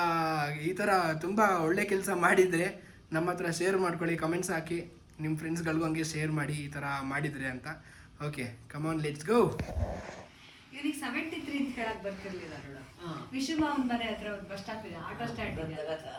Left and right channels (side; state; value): both; identical; correlation 1.00